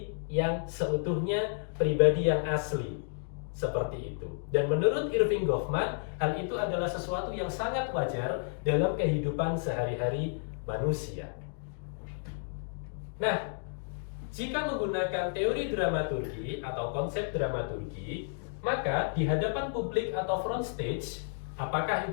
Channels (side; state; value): right; silent; digital silence